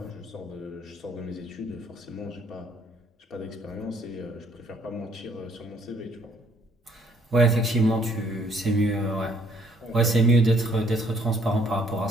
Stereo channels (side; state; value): both; normal; correlation 0.64